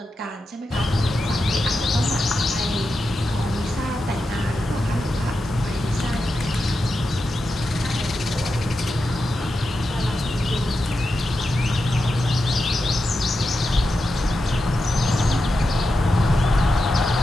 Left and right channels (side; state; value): both; normal; correlation 0.89